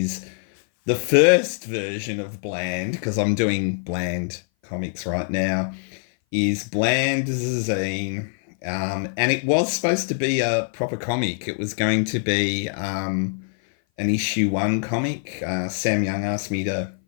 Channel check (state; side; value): silent; right; 58 dB below the other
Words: the first version of Bland, because I'm doing Bland comics right now, is Bland zine. And it was supposed to be a proper comic. It was going to be an issue one comic. Sam Young asked me to